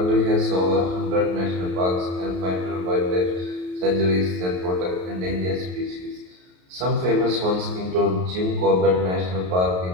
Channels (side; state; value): left; late; 33 ms